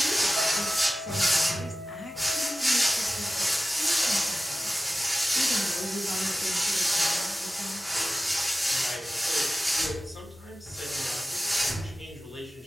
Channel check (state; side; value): normal; both; correlation 0.95